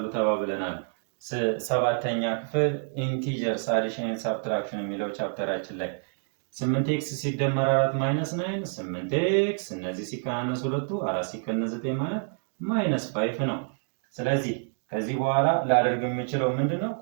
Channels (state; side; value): silent; left; 60 dB below the other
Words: ተባብለናል። ሰባተኛ ክፍል ኢንቲጀርስ አዲሽን ኤንድ ሳብትራክሽን የሚለው ቻፕተራችን ላይ 8x ሲደመር 4 ማይነስ 9 8x እነዚህ ሲቀናነስ ሁለቱ 4 ሲቀነስ 9 ማለት ማይነስ 5 ነው። ስለዚህ ከዚህ በኋላ ላደርግ የምችለው ምንድነው?